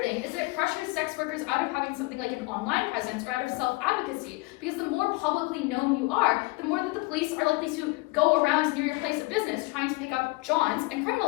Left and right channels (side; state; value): right; quieter; 24.1 dB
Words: thing is that it pressures sex workers out of having something like an online presence or out of self-advocacy, because the more publicly known you are, the more that the police police are likely to go around near your place of business trying to pick up Johns and